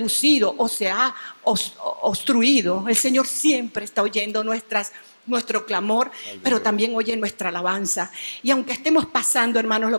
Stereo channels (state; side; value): inverted; both; correlation -1.00